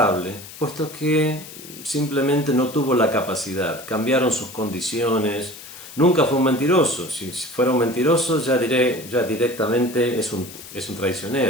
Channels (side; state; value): left; noise; hiss, 15 dB below the sound